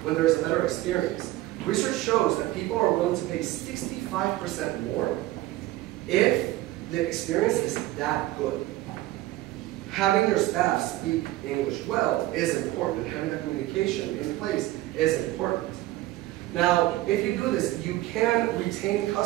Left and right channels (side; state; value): left; quieter; 16.7 dB